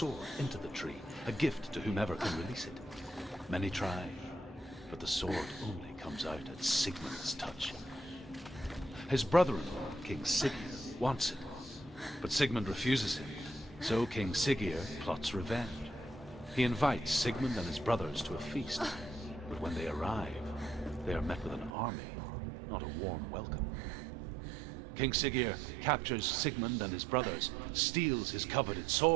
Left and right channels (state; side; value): drops out; left; at 21.7 s